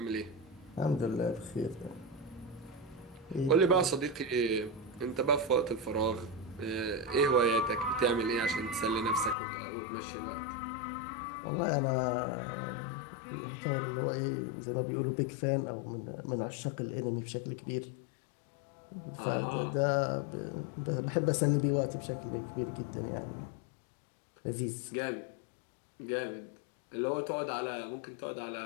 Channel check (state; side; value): drops out; right; at 9.3 s